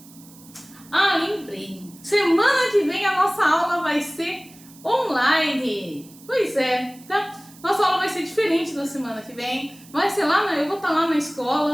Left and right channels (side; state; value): right; noise; hiss, 23 dB below the sound